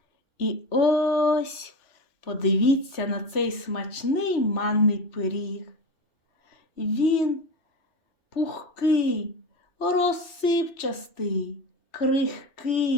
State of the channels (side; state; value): right; late; 3.2 ms